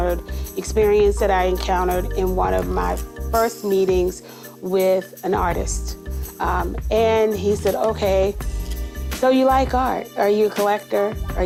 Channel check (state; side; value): identical; both; correlation 1.00